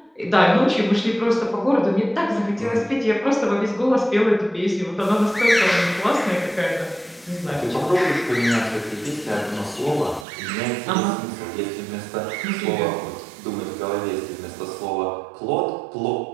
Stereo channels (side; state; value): left; drops out; at 10.2 s